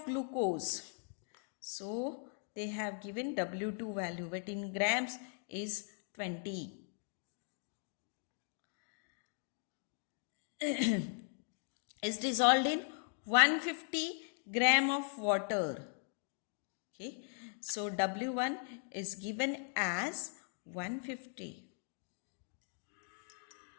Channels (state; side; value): silent; right; 52 dB below the other